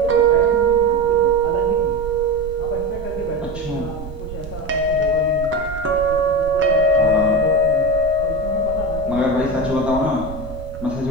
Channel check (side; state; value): right; noise; rumble, 12 dB below the sound